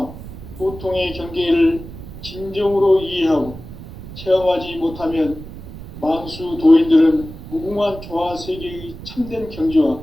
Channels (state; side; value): noise; right; rumble, 13 dB below the sound